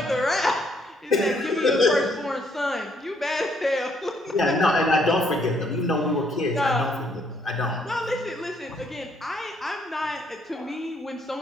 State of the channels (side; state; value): both; normal; correlation 0.69